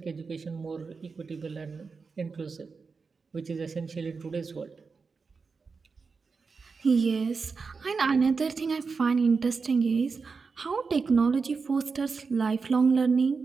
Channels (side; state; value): left; quieter; 4.8 dB